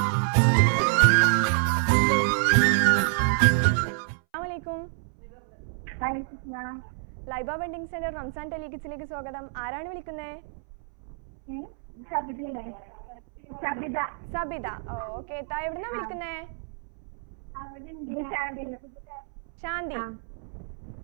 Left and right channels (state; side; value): silent; left; 59 dB below the other